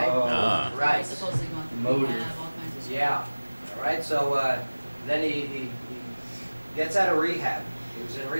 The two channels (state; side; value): inverted; both; correlation -1.00